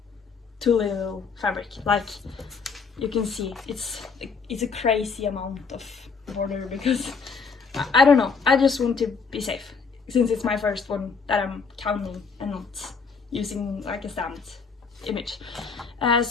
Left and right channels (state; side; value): quieter; right; 5.2 dB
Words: too little fabric. Like you can see, it's a crazy amount of border because I don't know, I just want to be safe since it's my first one that I'm counting and not using like a stamped image.